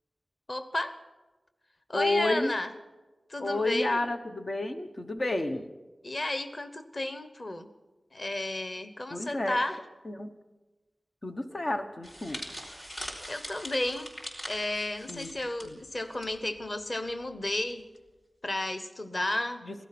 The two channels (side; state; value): both; normal; correlation 0.97